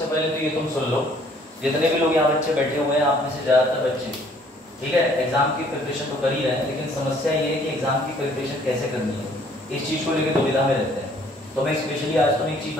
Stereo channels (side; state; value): both; normal; correlation 0.60